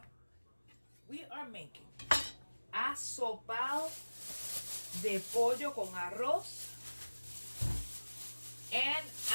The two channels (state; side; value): inverted; both; correlation -1.00